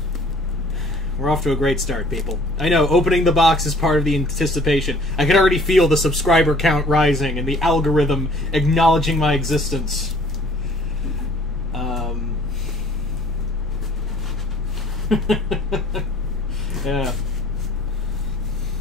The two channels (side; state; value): left; noise; rumble, 13 dB below the sound